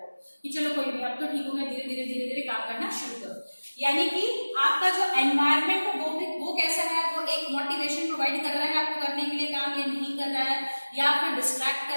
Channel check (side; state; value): both; inverted; correlation -1.00